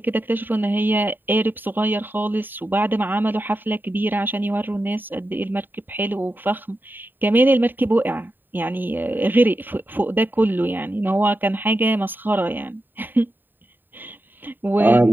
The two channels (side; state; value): left; late; 0.092 ms